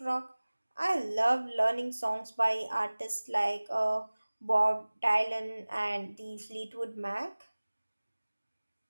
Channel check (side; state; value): both; inverted; correlation -1.00